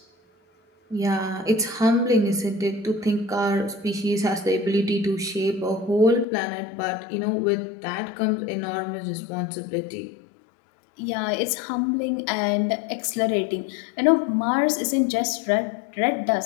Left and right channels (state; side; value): drops out; right; at 6.2 s